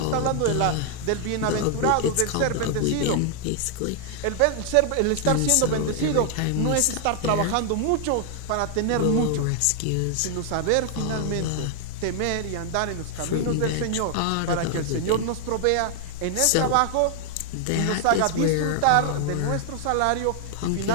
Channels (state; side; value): different; both; correlation 0.00